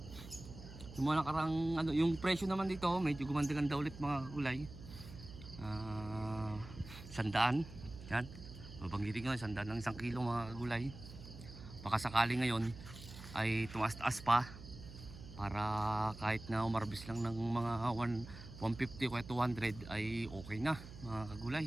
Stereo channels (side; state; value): right; noise; hum, 14 dB below the sound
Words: Yung mga nakarang ano, yung presyo naman dito medyo gumanda-ganda ulit mga kagulay. 100. Yan. Babanggitin ko 100 ng 1 kilo mga kagulay. Baka sakali ngayon ay tumaas-taas pa. Para kahit na umarbis lang ng mga 150 o 200 ay okay na mga